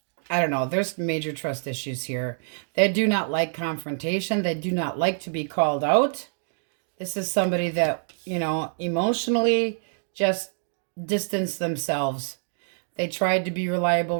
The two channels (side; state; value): left; silent; 61 dB below the other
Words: I don't know, there's major trust issues here. They do not like confrontation. They do not like to be called out. This is somebody that, you know, emotionally just distance themselves. They tried to be